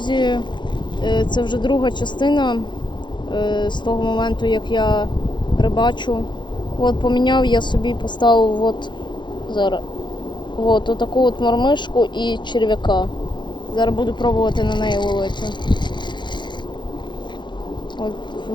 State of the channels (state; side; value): late; right; 0.22 ms